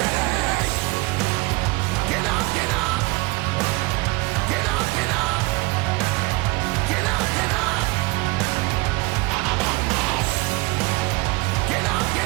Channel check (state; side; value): quieter; left; 23.7 dB